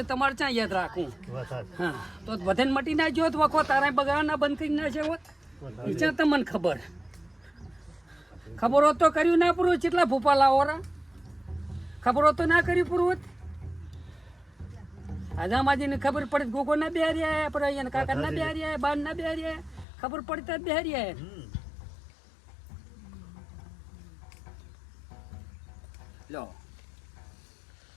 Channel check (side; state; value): right; drops out; at 19.9 s